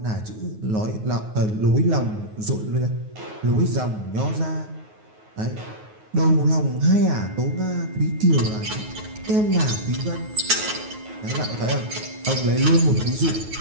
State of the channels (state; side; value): late; left; 9.4 ms